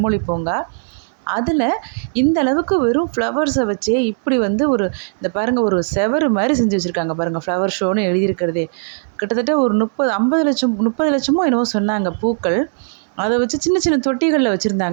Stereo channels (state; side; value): silent; left; 67 dB below the other